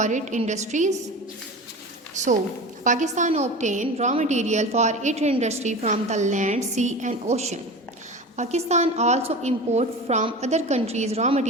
its industries? So, Pakistan obtains raw material for its industry from the land, sea and ocean. Pakistan also imports from other countries raw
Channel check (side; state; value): both; normal; correlation 0.32